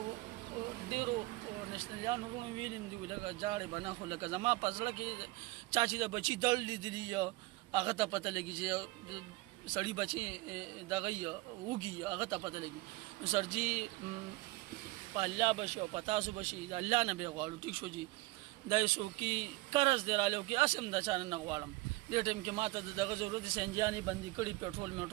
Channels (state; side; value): quieter; left; 21.1 dB